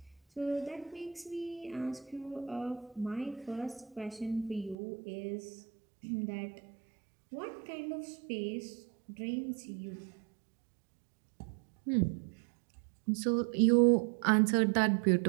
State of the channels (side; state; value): left; drops out; at 4.8 s